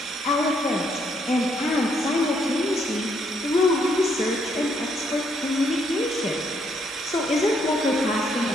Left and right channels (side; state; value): both; normal; correlation 0.72